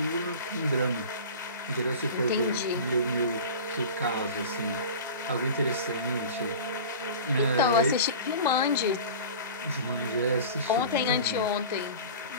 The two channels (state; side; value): inverted; both; correlation -0.36